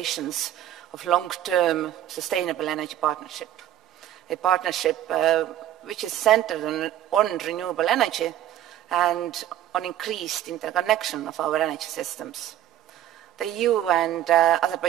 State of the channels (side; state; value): left; quieter; 12.1 dB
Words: of long-term sustainable energy partnership, a partnership which is centered on renewable energy and on increased interconnection of our energy systems. The EU and